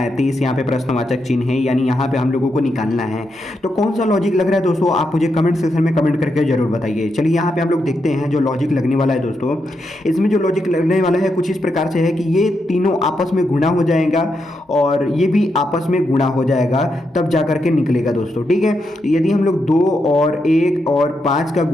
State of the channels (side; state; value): both; normal; correlation 0.83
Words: यहाँ पे प्रश्नवाचक चिन्ह है, यानी यहाँ पे हम लोगों को निकालना है। तो कौन सा लॉजिक लग रहा है दोस्तों, आप मुझे कमेंट सेक्शन में कमेंट करके जरूर बताइए। चलिए यहाँ पे हम लोग देखते हैं जो लॉजिक लगने वाला है दोस्तों। इसमें जो लॉजिक लगने वाला है कुछ इस प्रकार से है कि ये तीनों आपस में गुणा हो जाएगा और ये भी आपस में गुणा हो जाएगा, तब जा करके निकलेगा दोस्तों। ठीक है, यदि हम लोग 2 और 1 और 5 का